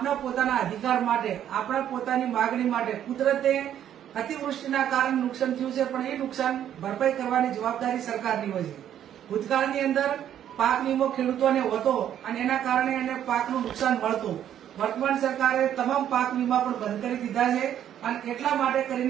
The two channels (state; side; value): quieter; left; 10.4 dB